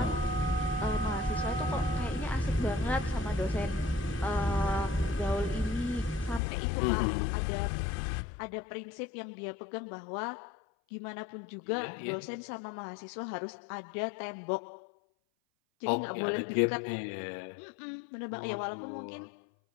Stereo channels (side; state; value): right; drops out; at 6.4 s